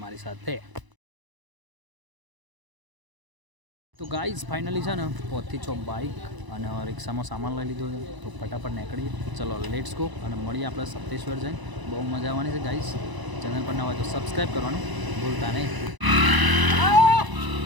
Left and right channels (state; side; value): late; left; 1.0 ms